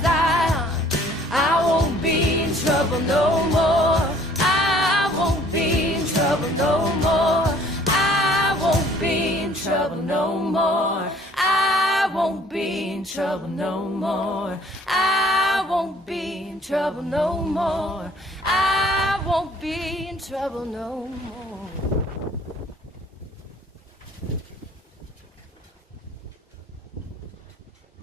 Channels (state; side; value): normal; both; correlation 0.56